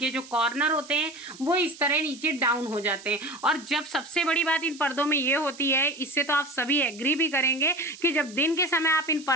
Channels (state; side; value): noise; right; hiss, 18 dB below the sound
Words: जो कॉर्नर होते हैं वो इस तरह नीचे डाउन हो जाते हैं। और जब सबसे बड़ी बात इन पर्दों में ये होती है, इससे तो आप सभी एग्री भी करेंगे कि जब दिन के समय आप इन